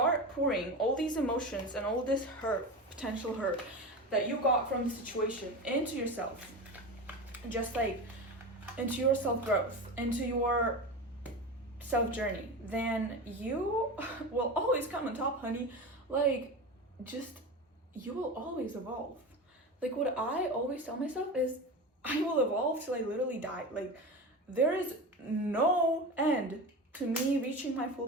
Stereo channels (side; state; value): both; normal; correlation 0.25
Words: pouring all these emotions and all this hurt, potential hurt that you got from the situation into yourself, just like into your self-growth, into your self-journey, then you will always come on top, honey. Like, just, you will always evolve. Like, what I always tell myself is, I will evolve till I literally die. Like, there is no end to me reaching my